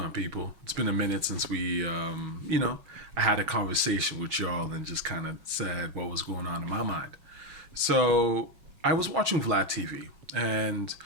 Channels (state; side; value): late; left; 6.3 ms